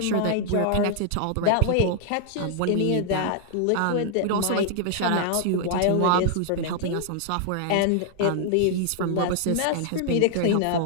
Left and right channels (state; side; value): different; both; correlation 0.00